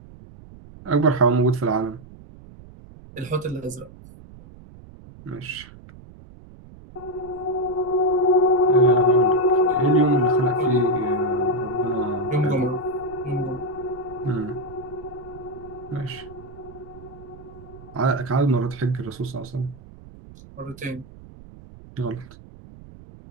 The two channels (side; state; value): right; noise; rumble, 19 dB below the sound